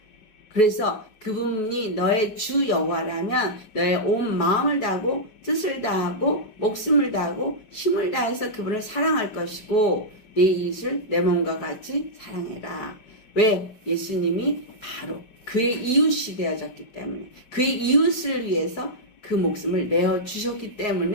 그래서 그분이 너의 주 여호와라면 너의 온 마음을 다하고 뜻을 다하고 목숨을 다하고 힘을 다해서 그분을 사랑할 것이고 내 이웃을 내 몸과 같이 사랑해라. 왜? 예수님이 바로 그의 이웃이 되어졌기 때문에, 그의 이웃을 위해서 그 목숨을 내어 주셨기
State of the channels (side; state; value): right; late; 5.2 ms